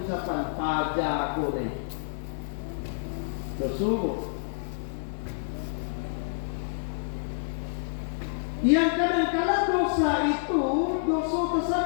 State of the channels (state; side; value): silent; right; digital silence